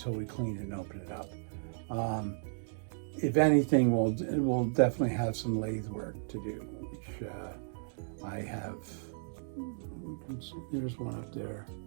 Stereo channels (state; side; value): silent; left; digital silence